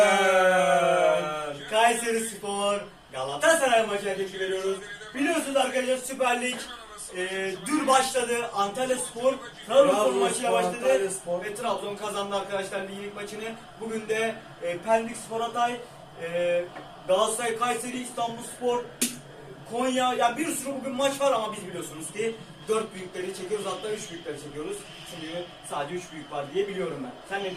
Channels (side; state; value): both; identical; correlation 1.00